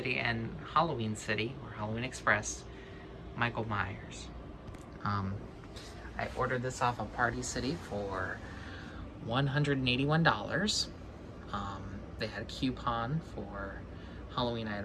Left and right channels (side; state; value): both; identical; correlation 1.00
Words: and Halloween City, or Halloween Express, Michael Myers. I ordered this off of Party City for $181. They had a coupon for Halloween